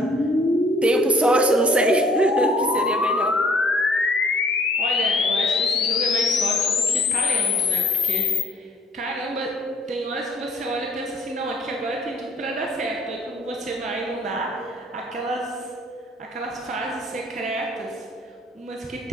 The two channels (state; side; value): normal; both; correlation 0.58